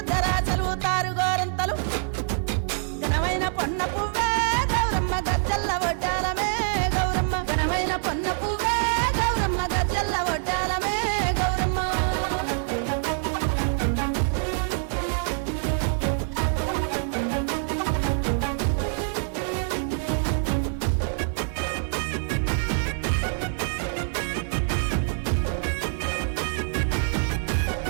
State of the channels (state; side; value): silent; left; 59 dB below the other